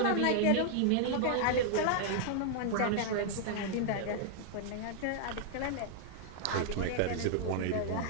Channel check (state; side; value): different; both; correlation -0.01